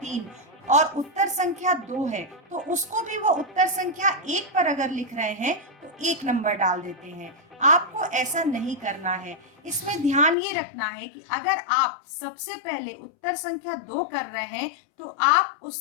और उत्तर संख्या 2 है, तो उसको भी वो उत्तर संख्या 1 पर अगर लिख रहे हैं तो 1 नंबर डाल देते हैं। आपको ऐसा नहीं करना है। इसमें ध्यान ये रखना है कि अगर आप सबसे पहले उत्तर संख्या 2 कर रहे हैं तो आप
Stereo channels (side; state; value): right; drops out; at 10.4 s